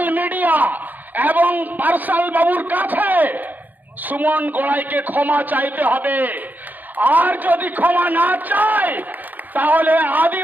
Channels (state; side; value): late; left; 0.084 ms